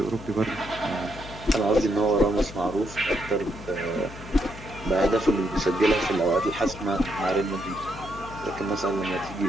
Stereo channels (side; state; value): left; noise; hum, 14 dB below the sound